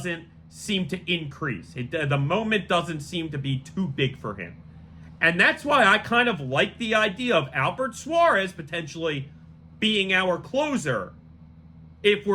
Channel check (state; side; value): identical; both; correlation 1.00